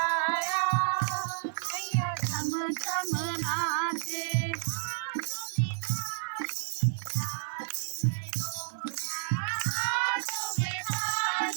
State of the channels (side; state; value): left; silent; digital silence